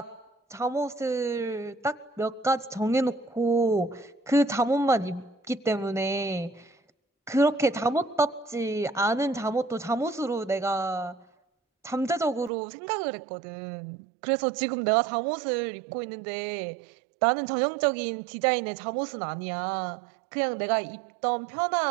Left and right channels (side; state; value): left; drops out; at 12.5 s